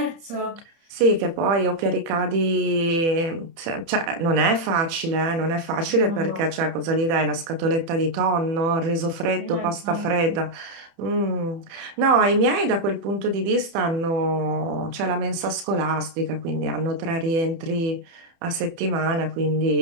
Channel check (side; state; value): left; late; 30 ms